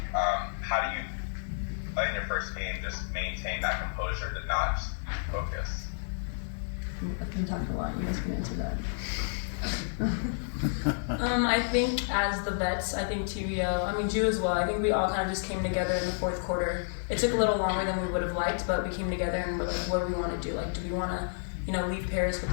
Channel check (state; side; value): silent; right; digital silence